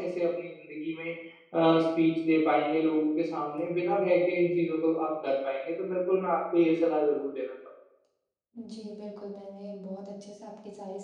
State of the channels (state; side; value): identical; both; correlation 1.00